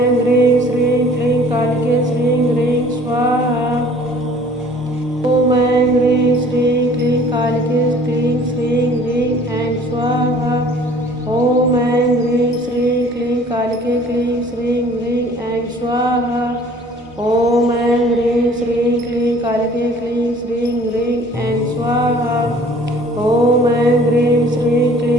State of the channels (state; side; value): normal; both; correlation 0.52